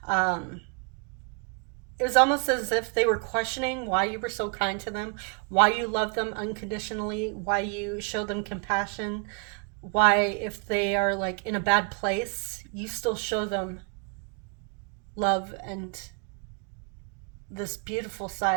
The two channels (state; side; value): quieter; left; 36.1 dB